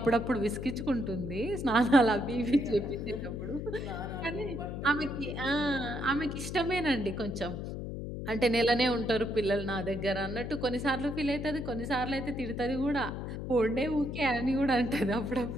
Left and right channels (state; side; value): noise; left; hum, 6 dB below the sound